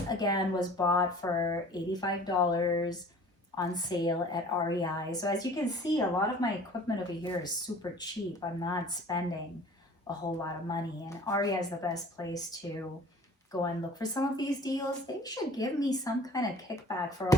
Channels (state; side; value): normal; both; correlation 0.47